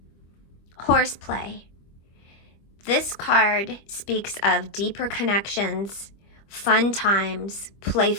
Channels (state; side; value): late; right; 25 ms